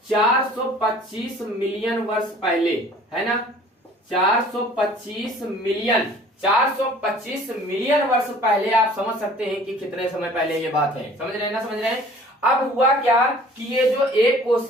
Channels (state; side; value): normal; both; correlation 0.50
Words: 425 मिलियन वर्ष पहले, है ना, 425 मिलियन वर्ष पहले। आप समझ सकते हैं कि कितने समय पहले ये बात है, समझ रहे हैं। अब हुआ क्या कि ये जो एक